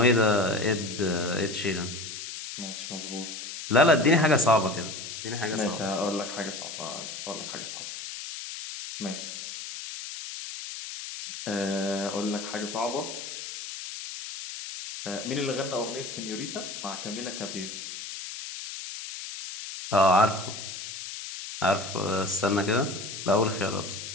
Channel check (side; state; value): left; noise; hiss, 9 dB below the sound